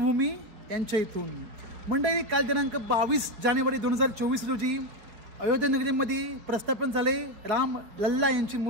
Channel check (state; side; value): late; left; 4.6 ms